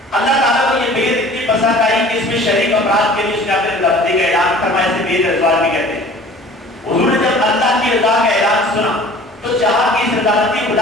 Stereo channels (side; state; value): both; normal; correlation 0.47